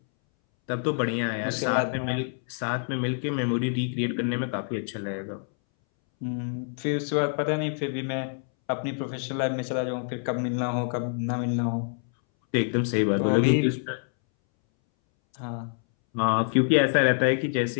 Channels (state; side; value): silent; right; 60 dB below the other